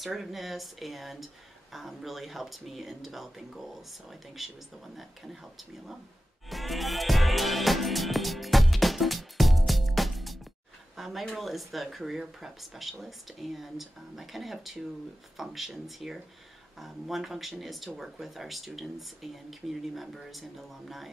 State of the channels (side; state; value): both; normal; correlation 0.94